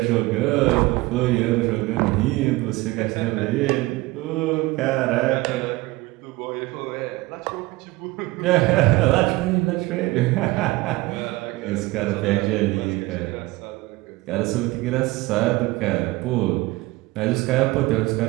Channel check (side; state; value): left; quieter; 20.4 dB